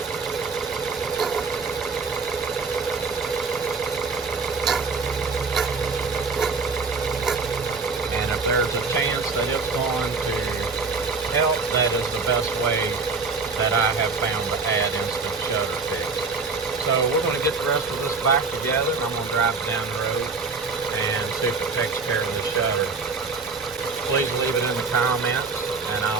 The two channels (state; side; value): quieter; left; 4.4 dB